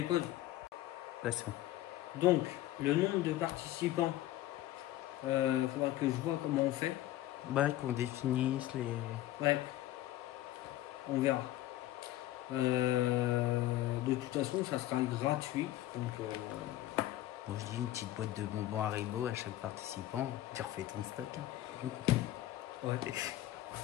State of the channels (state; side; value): quieter; right; 14.7 dB